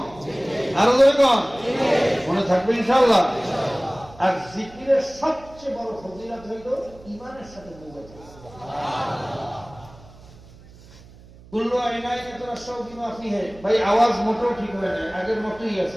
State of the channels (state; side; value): noise; right; hum, 22 dB below the sound